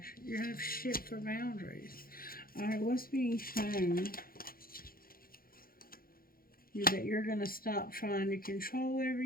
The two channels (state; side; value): late; right; 0.42 ms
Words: You have shit for boundaries. Alright, what's being shown? That you're going to stop trying to control